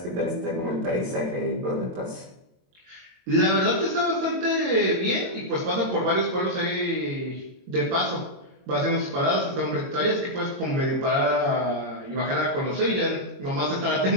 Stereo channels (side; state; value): left; late; 22 ms